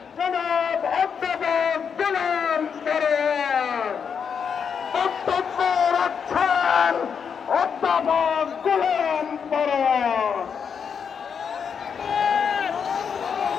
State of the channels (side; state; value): right; quieter; 6.8 dB